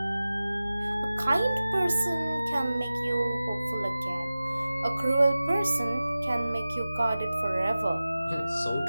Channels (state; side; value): inverted; both; correlation -0.96